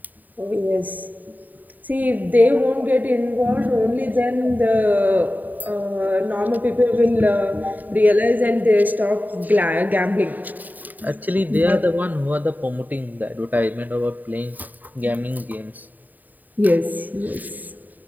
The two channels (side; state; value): left; late; 0.085 ms